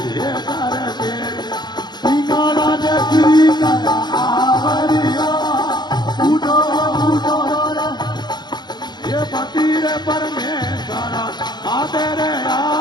रे पेरियो पिंगाला ने कीर्तन आवड़ियो उठो उठो रे ये पति रे परमेश्वर माते रे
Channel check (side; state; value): right; late; 0.21 ms